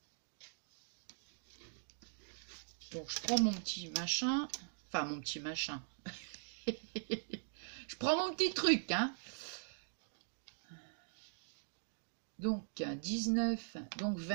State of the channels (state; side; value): silent; left; digital silence